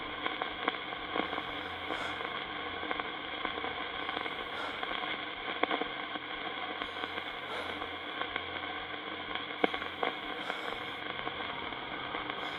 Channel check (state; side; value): identical; both; correlation 1.00